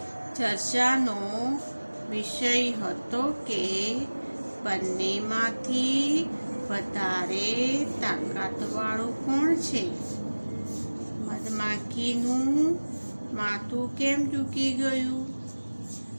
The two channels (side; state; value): both; inverted; correlation -1.00